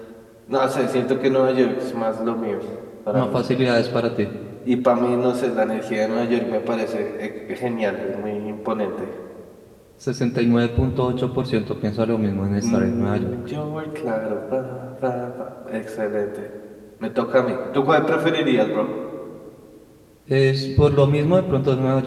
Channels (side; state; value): both; identical; correlation 1.00